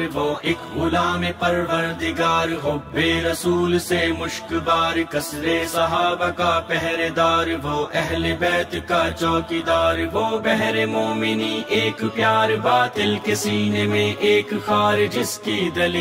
وہ ایک غلام پروردگار حب رسول سے مشک بار کثر صحابہ کا پہرے دار وہ اہل بیت کا چوکیدار وہ بحر مومنی ایک پیار باطل کے سینے میں ایک خار جس کی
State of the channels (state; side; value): identical; both; correlation 1.00